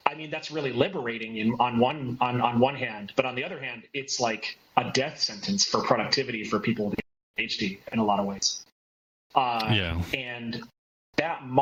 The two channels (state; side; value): identical; both; correlation 1.00